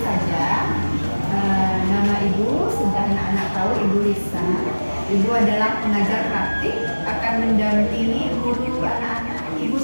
saja. Nama Ibu sudah anak-anak tahu, Ibu Risa. Ibu adalah pengajar praktik, akan mendampingi guru anak-anak. Ibu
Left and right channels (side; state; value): both; inverted; correlation -1.00